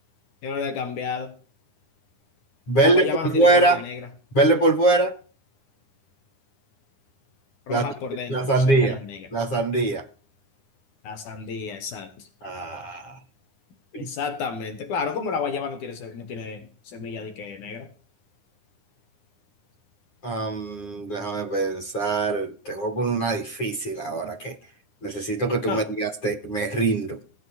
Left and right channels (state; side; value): late; right; 9.8 ms